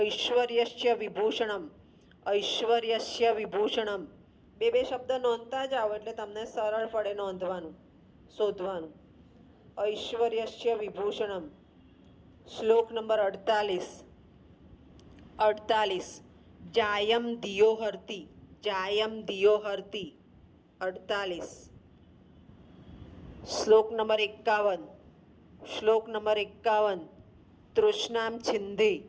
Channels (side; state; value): both; identical; correlation 1.00